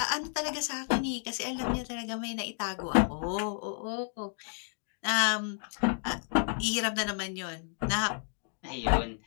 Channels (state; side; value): silent; right; 57 dB below the other